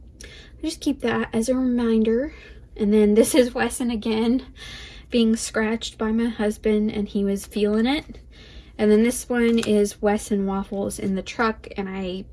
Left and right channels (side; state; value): both; identical; correlation 1.00